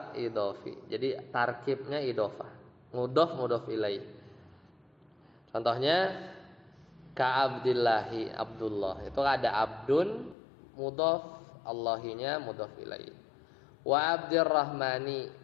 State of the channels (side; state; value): right; drops out; at 10.4 s